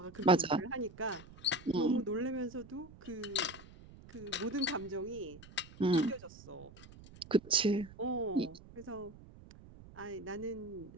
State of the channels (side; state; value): right; noise; rumble, 19 dB below the sound